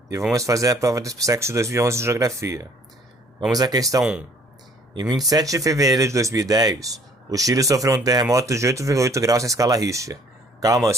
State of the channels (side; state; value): both; normal; correlation 0.58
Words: e vamos fazer a prova do SPSEC 2011 de Geografia. Vamos à questão 1. Em 27 de fevereiro de 2010, o Chile sofreu um terremoto de 8,8 graus na escala Richter. Calma, eu